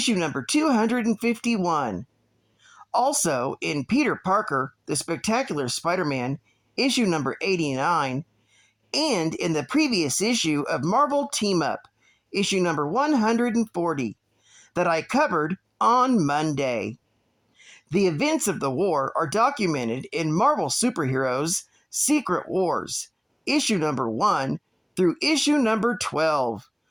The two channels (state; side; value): identical; both; correlation 1.00